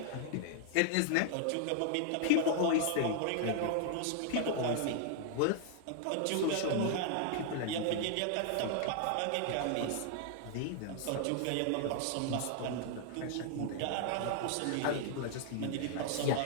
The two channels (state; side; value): different; both; correlation 0.00